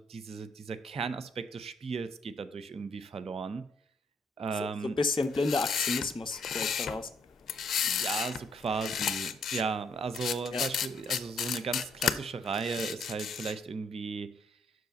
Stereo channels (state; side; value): normal; both; correlation 0.70